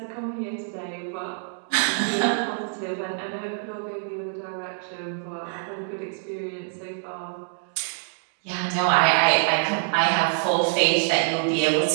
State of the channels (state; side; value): silent; left; digital silence